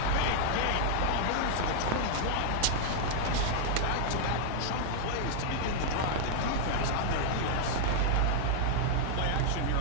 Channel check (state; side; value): different; both; correlation -0.01